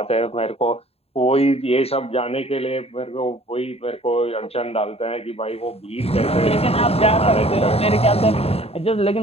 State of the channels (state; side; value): late; right; 0.29 ms